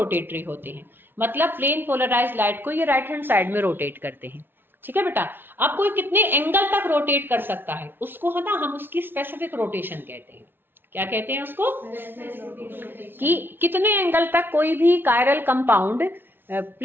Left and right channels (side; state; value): left; late; 0.10 ms